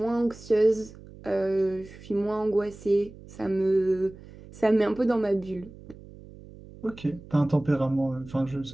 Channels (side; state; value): right; noise; hum, 19 dB below the sound